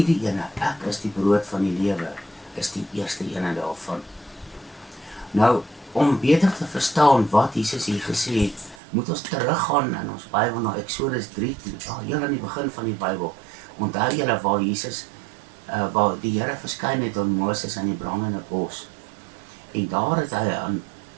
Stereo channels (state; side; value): drops out; left; at 8.8 s